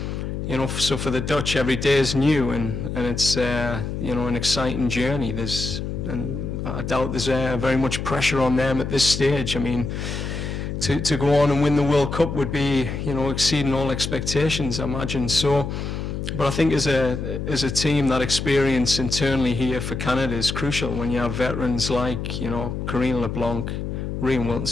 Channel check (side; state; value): left; noise; hum, 4 dB below the sound